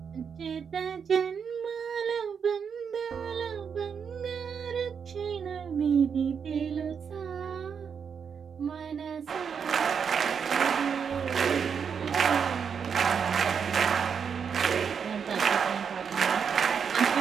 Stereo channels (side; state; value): left; quieter; 6.8 dB